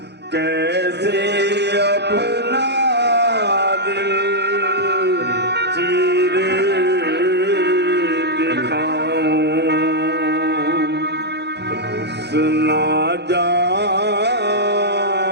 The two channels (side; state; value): left; late; 0.49 ms